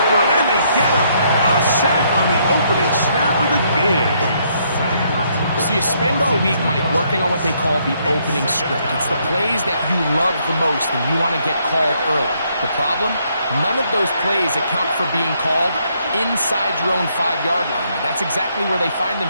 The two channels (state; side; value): inverted; both; correlation -0.71